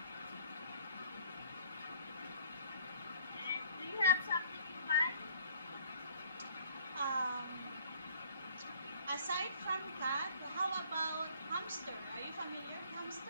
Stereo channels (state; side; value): inverted; both; correlation -0.57